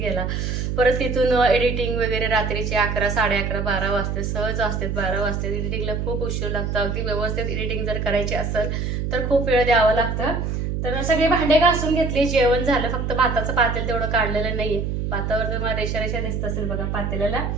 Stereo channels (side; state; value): right; noise; hum, 2 dB below the sound